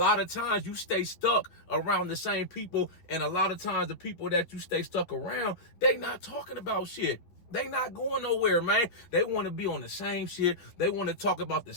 of times you stay stuck around the same people, and a lot of times the people that you stay stuck around, they not talking about shit. They not going nowhere, man. They want to be on the same shit. They want to talk about the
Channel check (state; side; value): late; right; 10 ms